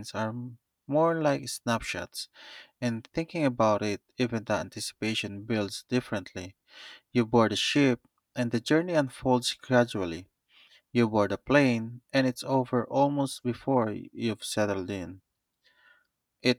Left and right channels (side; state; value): both; identical; correlation 1.00